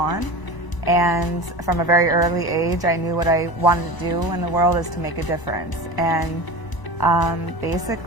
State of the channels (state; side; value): late; right; 1.0 ms